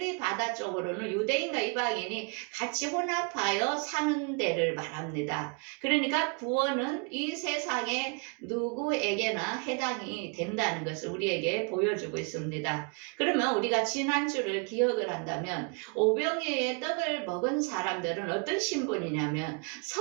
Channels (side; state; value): left; quieter; 35.2 dB